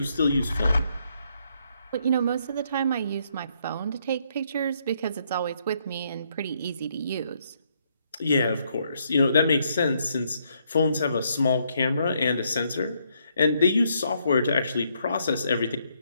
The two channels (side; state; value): both; inverted; correlation -0.73